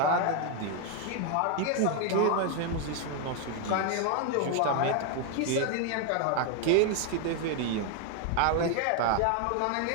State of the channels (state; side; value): different; both; correlation 0.01